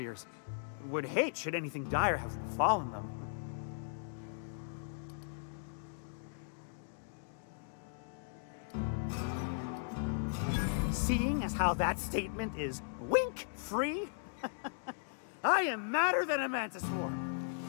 Would hate should anything dire have befallen them. Seeing as how that statement is wink-free, I am madder than a mantis swarm,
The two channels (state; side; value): silent; right; digital silence